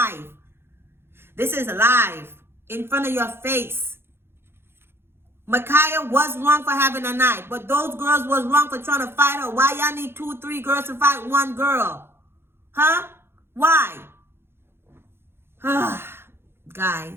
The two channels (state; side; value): late; left; 0.11 ms